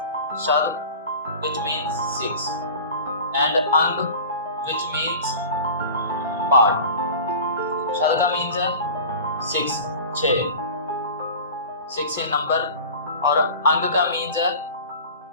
Shad, which means 6, and Ang, which means part. Shad का means है 6, 6 in number, और Ang का means है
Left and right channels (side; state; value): both; inverted; correlation -0.37